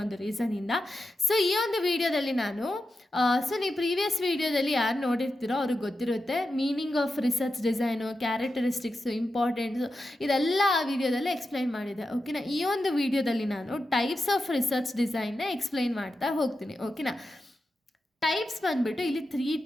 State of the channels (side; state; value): both; normal; correlation 0.90